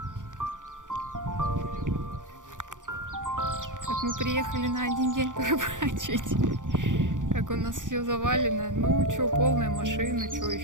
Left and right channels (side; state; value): left; late; 0.87 ms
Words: Как мы приехали на один день порыбачить. Как у нас все завалено. Ну, что, полная машина, что,